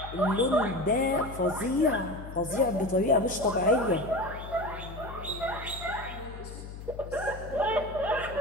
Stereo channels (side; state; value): left; noise; hum, 11 dB below the sound